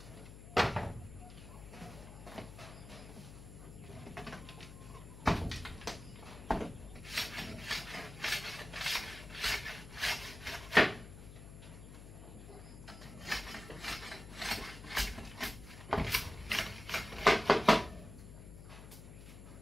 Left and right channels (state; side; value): noise; left; hum, 14 dB below the sound